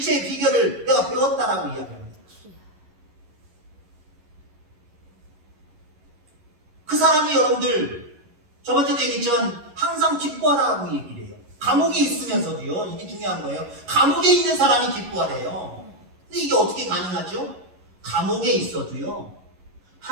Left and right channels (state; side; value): late; left; 11 ms